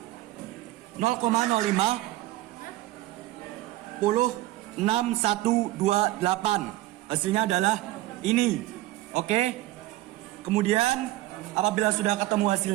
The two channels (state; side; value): quieter; left; 16.9 dB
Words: 0,05 hasilnya adalah ini. Oke. Kemudian apabila sudah ketemu